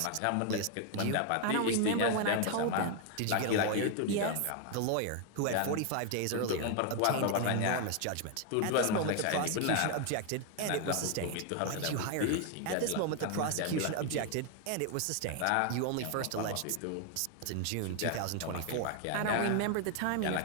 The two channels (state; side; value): different; both; correlation 0.00